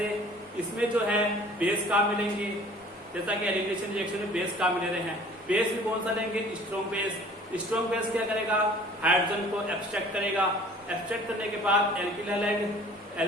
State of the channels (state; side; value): normal; both; correlation 0.49